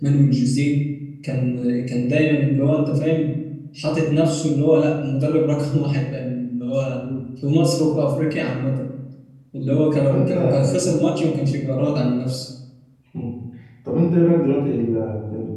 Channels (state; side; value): identical; both; correlation 1.00